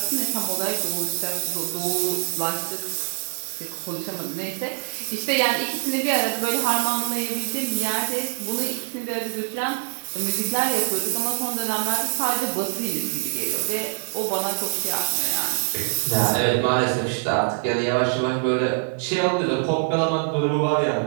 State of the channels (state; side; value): silent; left; digital silence